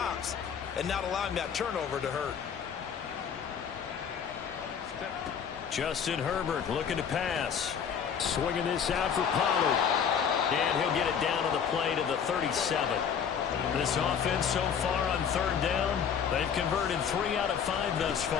and not allowing that turnover to hurt. Justin Herbert looking to pass. Swinging this out for Pollard. And he'll get it down to the play to the 37. This offense so far on 3rd down, they've converted 3 out of 5 thus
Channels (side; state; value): right; quieter; 7.4 dB